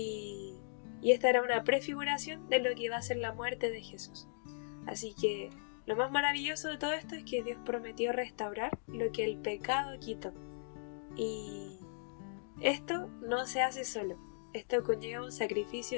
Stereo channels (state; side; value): silent; right; digital silence